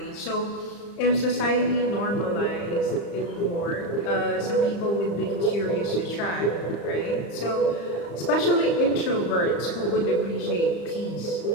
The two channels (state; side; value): late; right; 35 ms